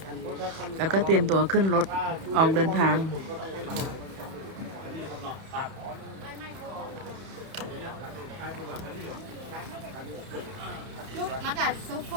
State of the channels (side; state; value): left; late; 31 ms